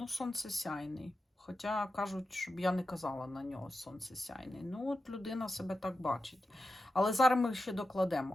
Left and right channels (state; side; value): normal; both; correlation 0.90